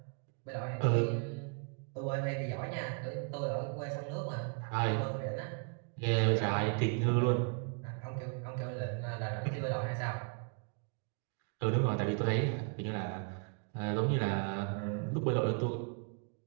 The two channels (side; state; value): left; quieter; 39.0 dB